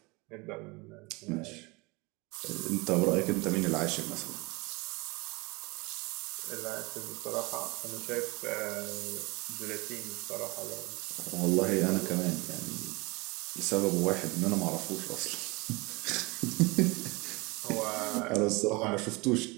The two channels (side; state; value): left; quieter; 25.4 dB